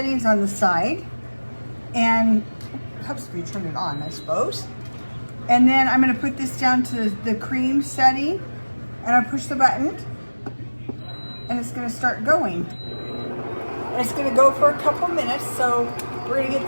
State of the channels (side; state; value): both; inverted; correlation -1.00